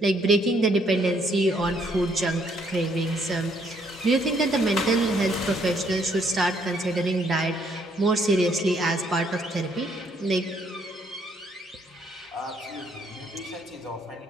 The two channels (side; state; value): both; normal; correlation 0.68